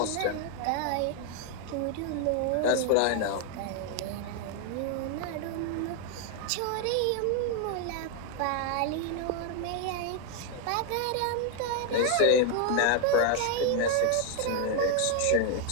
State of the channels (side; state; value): both; different; correlation 0.00